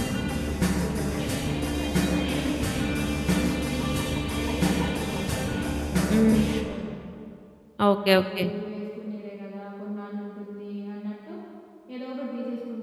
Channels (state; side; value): identical; both; correlation 1.00